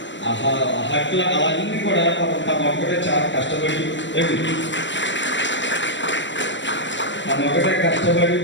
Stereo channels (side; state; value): right; late; 0.54 ms